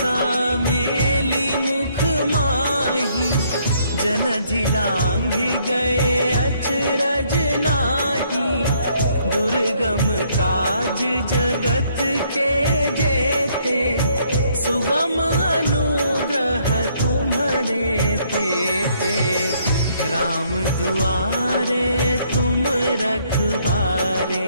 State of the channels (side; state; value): both; inverted; correlation -0.68